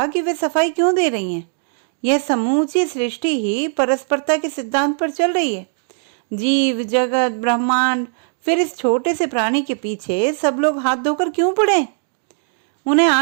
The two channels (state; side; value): silent; left; digital silence